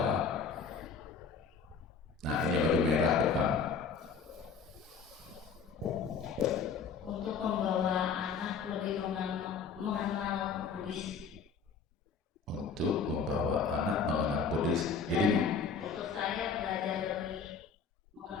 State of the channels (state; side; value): quieter; right; 5.6 dB